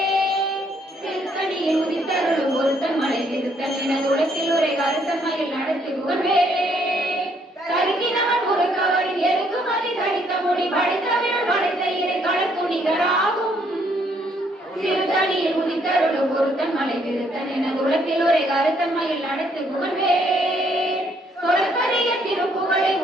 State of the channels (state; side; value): normal; both; correlation 0.69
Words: திருத்தணியில் உதித்தருளும் ஒருத்தன் மலை விருத்தன் என குலத்தில் உரை கருத்தன்மையில் நடத்துகுவன் வேலே. கருக்கினவன் ஒரு கவரின் எருக்குமதி தடித்த மொழி படித்தவிழ் படைத்த இறை களத்துணிகராகும். திருத்தணியில் உதித்தருளும் ஒருத்தன் மலை விருத்தன் என குலத்தில் உரை கருத்தன்மையில் நடத்துகுவன் வேலே. சொற்கரிய திருப்புகளை